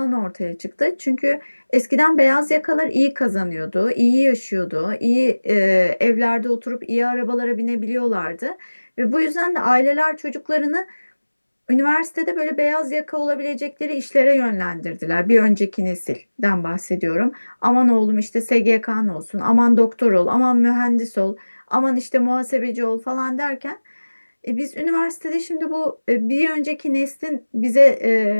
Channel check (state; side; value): inverted; both; correlation -1.00